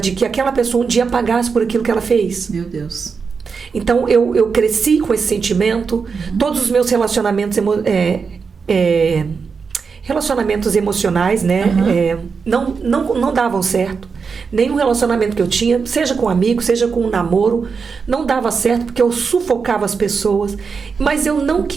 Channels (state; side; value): quieter; left; 5.4 dB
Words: que aquela pessoa um dia pagasse por aquilo que ela fez. Meu Deus. Então eu cresci com esse sentimento. Todos os meus relacionamentos relacionamentos emocionais, né? Não davam certo. Nenhum relacionamento que eu tinha, seja com amigo, seja com um namoro, não dava certo porque eu sufocava as pessoas. Mas eu não